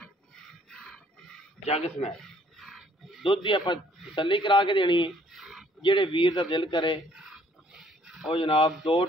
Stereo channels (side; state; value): both; normal; correlation 0.62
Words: जग समैत दुध की आप तसल्ली करा के देनी है। जेड़े वीर का दिल करे वो जनाब 2